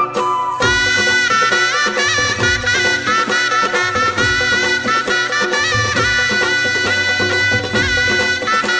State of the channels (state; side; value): identical; both; correlation 1.00